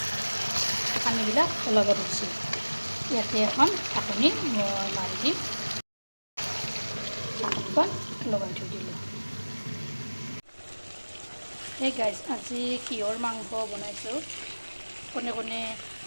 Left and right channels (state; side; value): inverted; both; correlation -1.00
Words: পানীবিলাক ওলাব ধৰিছে। ইয়াতে এখন ঢাকনি মই মাৰি দিম, ঢাকনিখন লগাই থৈ দিলোঁ। এই গাইজ, আজি কিহৰ মাংস বনাইছোঁ কোনে